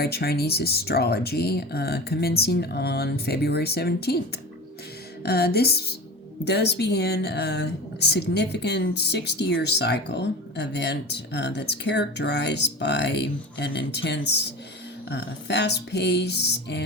Chinese astrology, commencing on February 17th. This does begin a significant 60-year cycle event that's characterized by an intense, fast pace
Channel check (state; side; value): normal; both; correlation 0.31